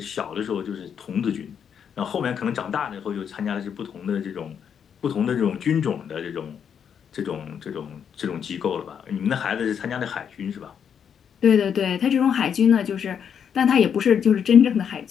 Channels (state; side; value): quieter; right; 7.8 dB